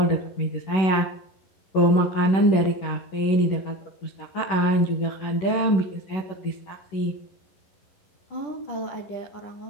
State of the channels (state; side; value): late; right; 11 ms